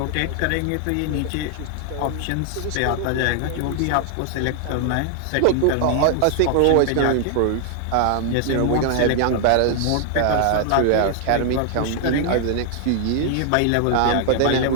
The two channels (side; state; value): both; different; correlation 0.00